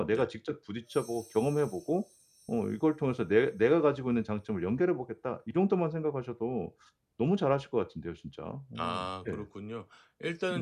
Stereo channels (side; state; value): both; identical; correlation 1.00